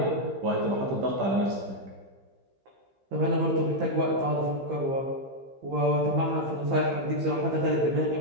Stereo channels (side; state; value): left; late; 15 ms